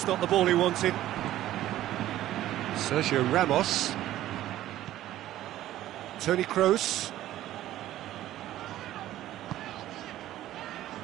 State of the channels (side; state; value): left; quieter; 13.8 dB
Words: not the ball he wanted. Sergio Ramos. Toni Kroos.